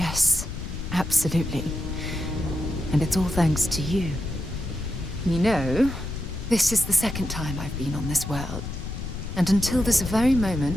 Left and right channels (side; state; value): left; noise; rumble, 7 dB below the sound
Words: absolutely. And it's all thanks to you. You know, this is the second time I've been on this world. And until this very